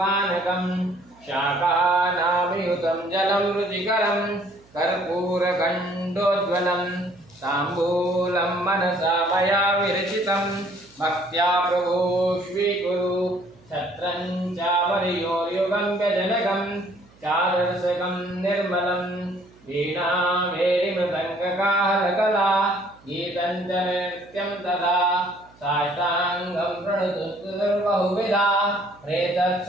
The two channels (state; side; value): noise; right; hum, 28 dB below the sound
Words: शाकानामयुतं जलं रुचिकरं कर्पूरखण्डोज्ज्वलं ताम्बूलं मनसा मया विरचितं भक्त्या प्रभो स्वीकुरु छत्रं चामर्योयुगं व्यजनकं चारसकं निर्मलं वीणामेरिमृदङ्गकाहलकला गीतं च नृत्यं तथा साष्टाङ्गं प्रणुतुर्बहुविधा